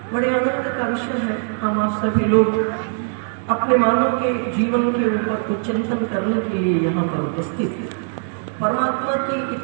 बड़े आनंद का विषय है, हम आप सभी लोग अपने मानव के जीवन के ऊपर कुछ चिंतन करने के लिए यहाँ पर उपस्थित हैं। परमात्मा की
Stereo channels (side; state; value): left; silent; 61 dB below the other